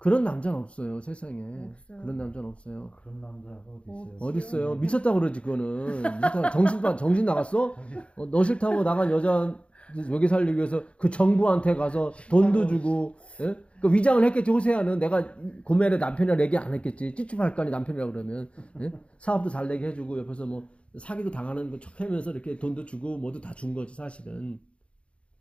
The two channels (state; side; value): late; right; 0.060 ms